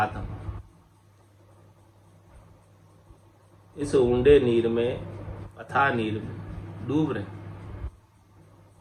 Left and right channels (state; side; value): identical; both; correlation 1.00